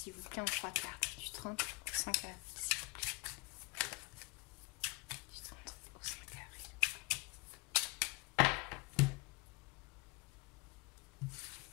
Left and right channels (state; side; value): quieter; right; 26.2 dB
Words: vous plaît, en 3 cartes. Du 30 au 5 avril.